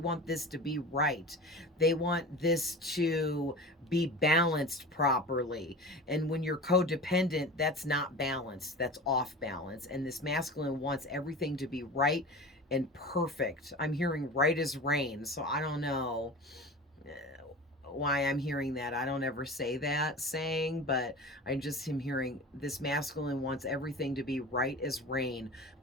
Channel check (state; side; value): normal; both; correlation 0.34